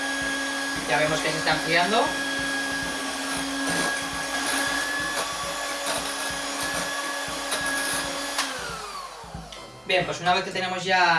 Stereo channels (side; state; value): both; identical; correlation 1.00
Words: Ya vemos que se está enfriando. Bien, pues una vez que tenemos